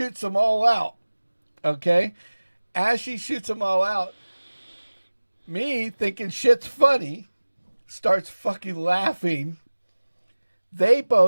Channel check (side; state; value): both; inverted; correlation -1.00